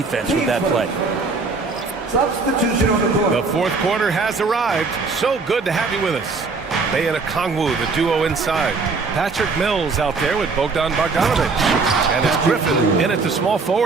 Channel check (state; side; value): quieter; left; 4.3 dB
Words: with that play. Substitution on the court. The fourth quarter has arrived. So good to have you with us. Bay and Okongwu, the duo inside. Patrick Mills out there with Bogdan Bogdanovich. And it's Griffin in at the small